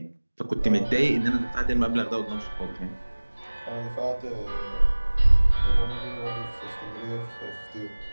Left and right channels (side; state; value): both; inverted; correlation -1.00